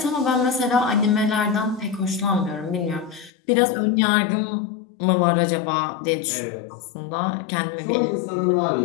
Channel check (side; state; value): right; drops out; at 3.3 s